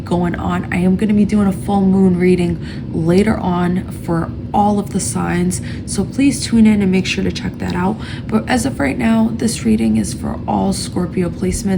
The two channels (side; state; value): both; identical; correlation 1.00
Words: on. I am going to be doing a full moon reading later on for all of the signs, so please tune in and make sure to check that out. But as of right now, this reading is for all Scorpio